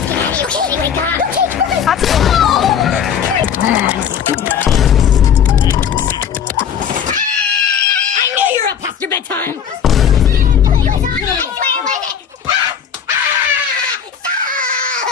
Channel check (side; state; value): right; quieter; 8.0 dB